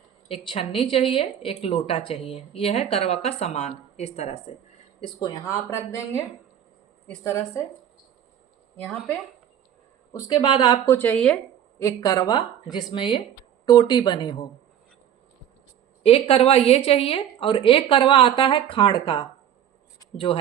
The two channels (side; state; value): left; quieter; 10.0 dB